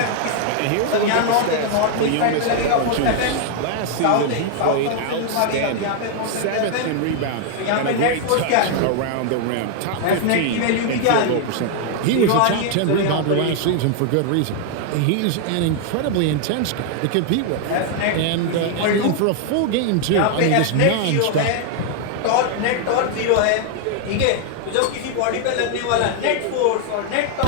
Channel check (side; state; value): both; different; correlation 0.00